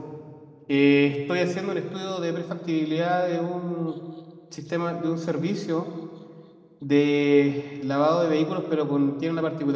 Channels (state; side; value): identical; both; correlation 1.00